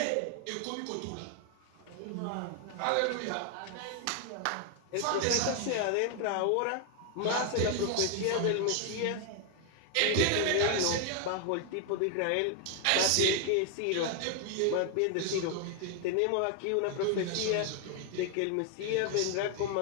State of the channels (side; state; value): both; different; correlation 0.00